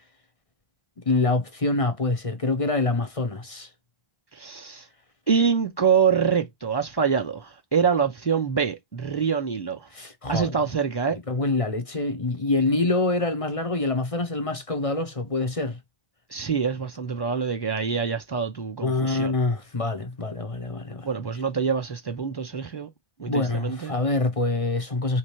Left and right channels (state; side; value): late; right; 1.6 ms